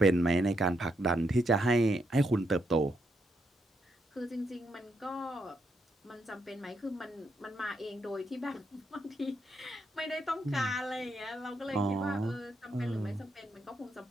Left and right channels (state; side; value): normal; both; correlation 0.79